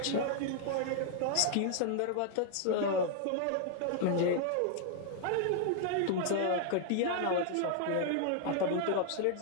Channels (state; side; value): different; both; correlation 0.00